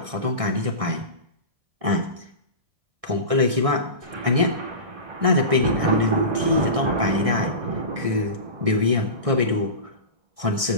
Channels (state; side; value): late; left; 1.6 ms